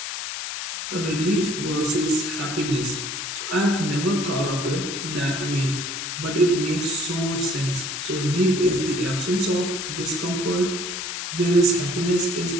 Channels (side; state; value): left; noise; hiss, 5 dB below the sound